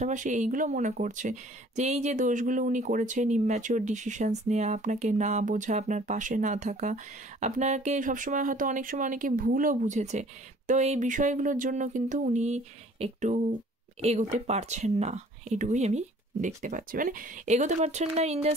এইগুলো মনে করছে যে এই যে দোষগুলো উনি করেছেন, ইম্যাচিওর ডিসিশনস নেওয়া, আপনাকে না বোঝা, আপনার পাশে না থাকা, আপনাকে সবসময় হয়তো অনেক সময় অনেকে ভুলও বুঝেছে, তো এই বিষয়গুলোর জন্য কিন্তু উনি একটু এগোতে পারছেন না, এটুকুই আমি দেখতে পাচ্ছি। মানে এগোতে পারছেন না ইন দ্য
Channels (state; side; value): normal; both; correlation 0.53